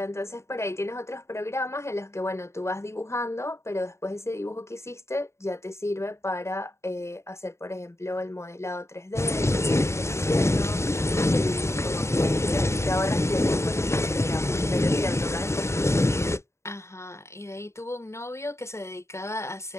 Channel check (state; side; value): late; right; 0.13 ms